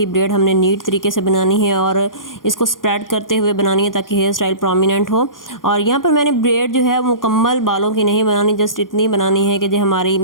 ब्रेड हमने नीट तरीके से बनानी है और इसको स्प्रेड करते हुए बनानी है ताकि हेयर स्टाइल प्रोमिनेंट हो। और यहाँ पर मैंने ब्रेड जो है मुकम्मल बालों की नहीं बनानी, जस्ट इतनी बनानी है कि जो हमारी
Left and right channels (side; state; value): right; late; 0.90 ms